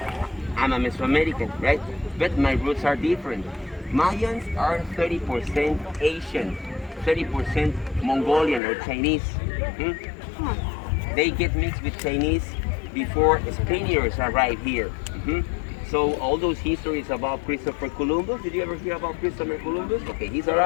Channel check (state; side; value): drops out; right; at 8.6 s